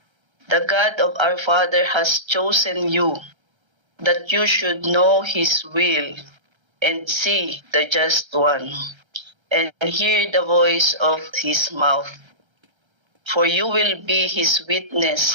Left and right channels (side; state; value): left; late; 1.3 ms